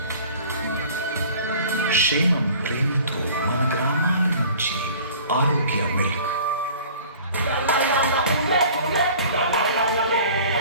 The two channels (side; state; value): both; inverted; correlation -0.47